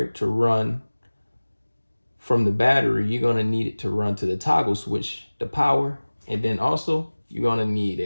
to run from the battery. You're gonna need it to run to the toggle switch, the power, and then also you're gonna need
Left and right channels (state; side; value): inverted; both; correlation -1.00